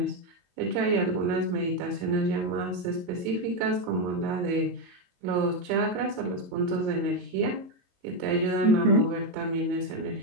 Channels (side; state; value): left; late; 22 ms